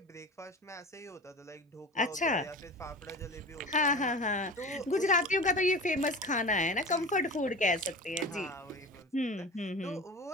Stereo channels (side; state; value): both; normal; correlation 0.33